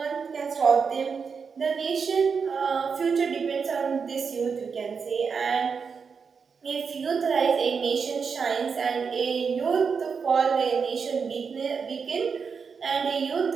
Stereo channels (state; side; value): quieter; left; 5.8 dB